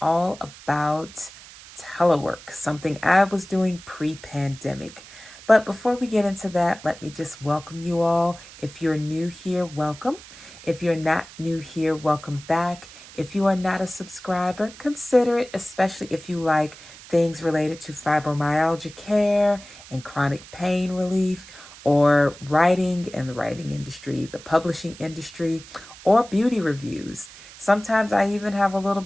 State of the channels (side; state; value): right; noise; hiss, 18 dB below the sound